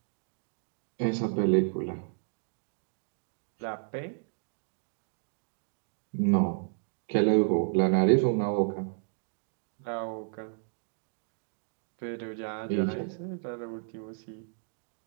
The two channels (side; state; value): left; silent; digital silence